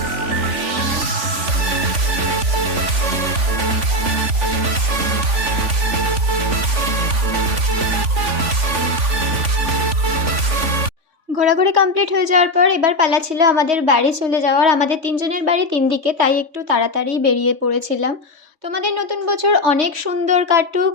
ঘোরাঘুরি কমপ্লিট হয়ে যাওয়ার পর এবার পালা ছিল আমাদের বাড়ি চলে যাওয়ার। আমাদের ৩ জনের বাড়ি ৩ দিকে, তাই একটু তাড়াতাড়ি বেরিয়ে পড়েছিলাম। তোমাদের নতুন বছর অনেক সুন্দর কাটুক,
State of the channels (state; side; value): late; left; 3.5 ms